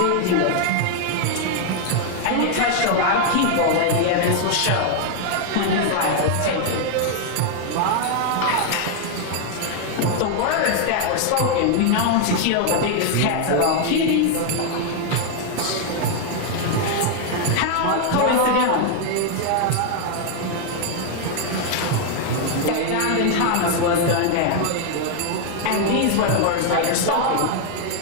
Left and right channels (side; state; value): both; different; correlation 0.00